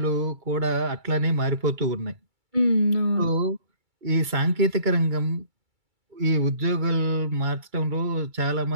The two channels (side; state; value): left; late; 2.3 ms